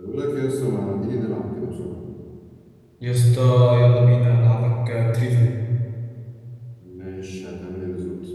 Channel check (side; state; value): both; identical; correlation 1.00